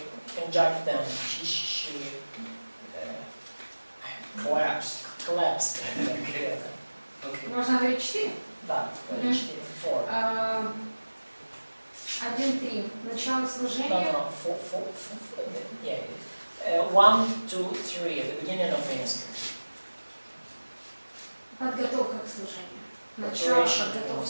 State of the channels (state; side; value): inverted; both; correlation -1.00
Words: conjuncted them. She collapsed. collapsed them together. Okay. Можно говорить 4? Да, Мгм. 4, 4. 1-3. Начало No, служения. no, 4, yeah. 1, 2, 3, the beginning of ministry. Подготовка к служению. Начало, Preparation to